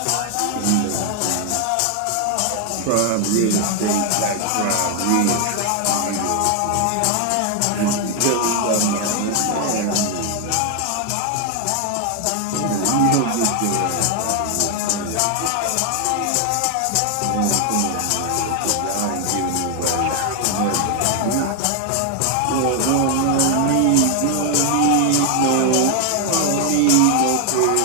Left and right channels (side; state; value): both; different; correlation 0.00